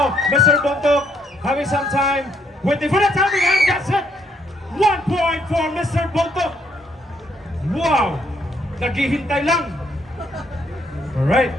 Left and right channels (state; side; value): normal; both; correlation 0.70